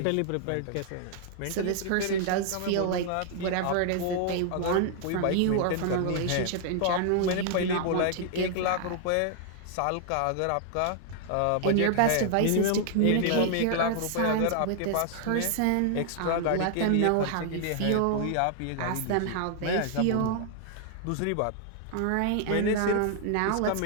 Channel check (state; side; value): different; both; correlation 0.00